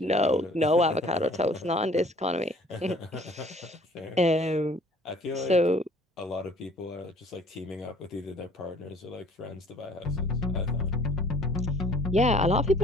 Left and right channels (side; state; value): both; normal; correlation 0.54